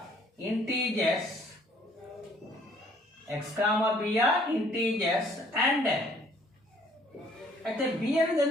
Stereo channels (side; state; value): both; normal; correlation 0.60